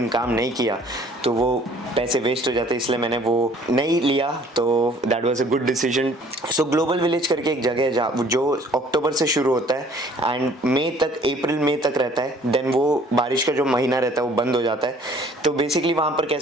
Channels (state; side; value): normal; both; correlation 0.55